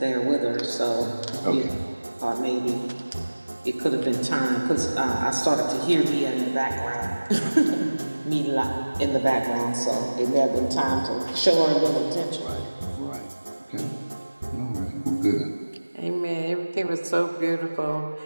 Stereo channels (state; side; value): inverted; both; correlation -1.00